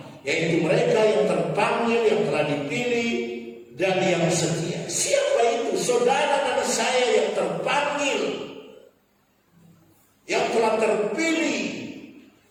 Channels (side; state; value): both; identical; correlation 1.00